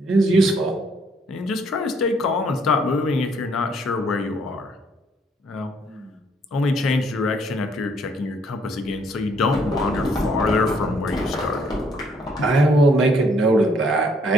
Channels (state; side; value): normal; both; correlation 0.67